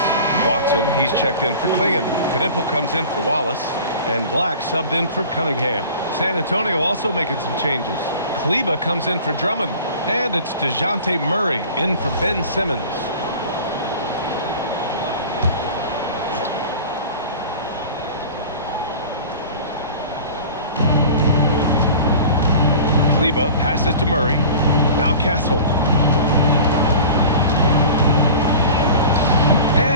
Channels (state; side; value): inverted; both; correlation -0.40